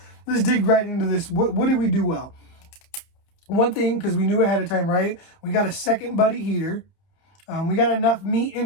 let's dig right into this. What did we do well? One thing, because we knew ahead of time, right? We got a second buddy heater. We got enough meat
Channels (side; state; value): right; late; 30 ms